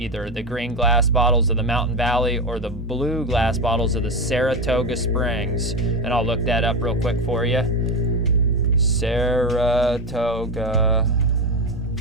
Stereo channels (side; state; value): both; normal; correlation 0.17